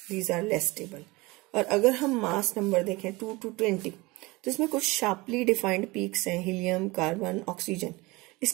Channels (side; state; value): left; quieter; 23.0 dB